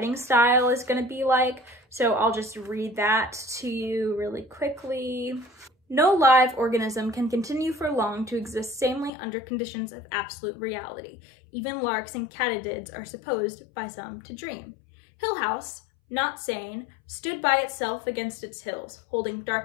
style is going to be like. So I'll just read that to you really quickly. No live organism can continue for long to exist sanely under conditions of absolute reality. Even larks and katydids are supposed by some to dream. Hill House, not sane, stood by itself against its hills, holding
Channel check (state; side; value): drops out; right; at 9.1 s